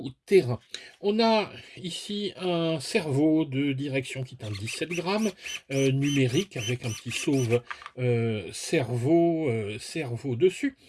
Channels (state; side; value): identical; both; correlation 1.00